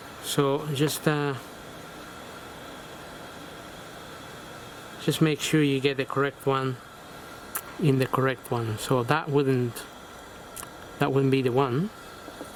So just make sure you get the correct one in the correct one. So that wouldn't be the one,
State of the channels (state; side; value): identical; both; correlation 1.00